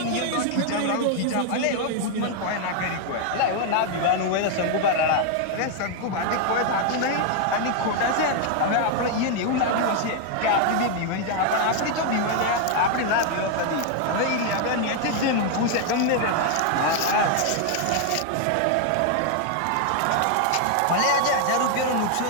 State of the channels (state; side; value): different; both; correlation 0.00